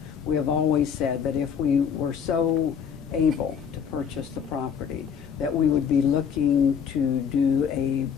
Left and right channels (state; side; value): quieter; right; 7.3 dB